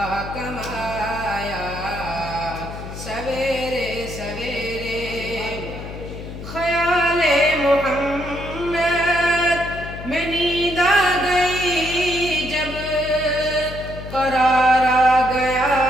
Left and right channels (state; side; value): noise; left; hum, 10 dB below the sound